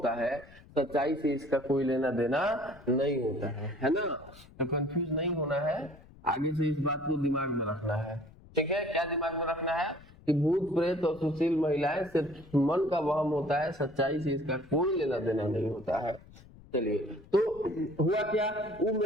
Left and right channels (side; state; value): left; noise; rumble, 22 dB below the sound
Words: है, सच्चाई से इसका कोई लेना देना नहीं होता है ना। तो कंफ्यूज नहीं होना है, आगे से इस बात को दिमाग में रखना है, ठीक है। क्या दिमाग में रखना है कि भूत प्रेत और सुशील महिलाएं सिर्फ मन का वहम होता है, सच्चाई से इसका कोई लेना देना नहीं होता है। चलिए, तो हुआ क्या, वो